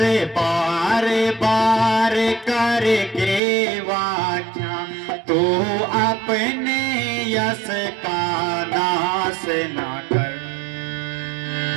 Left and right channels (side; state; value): left; drops out; at 3.4 s